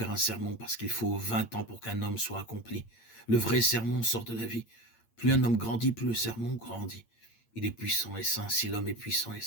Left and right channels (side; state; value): right; late; 8.7 ms